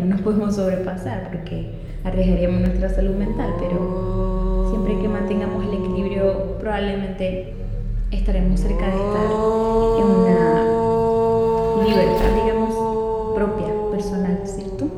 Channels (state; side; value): identical; both; correlation 1.00